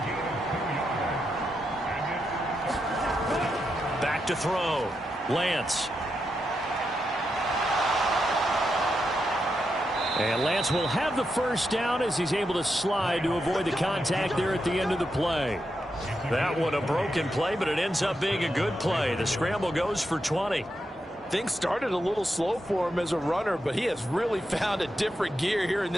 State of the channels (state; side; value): normal; both; correlation 0.85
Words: Back to throw. Lance. And Lance will have the first down as he's able to slide to avoid the contact there at the end of the play. That one a broken play, but it ends up being a good play. The scramble goes for 20. Things started a little slow for him as a runner, but he has really found a different gear here in